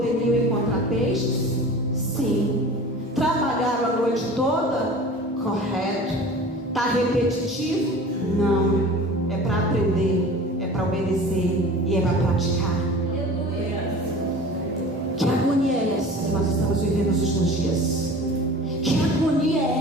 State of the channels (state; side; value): normal; both; correlation 0.39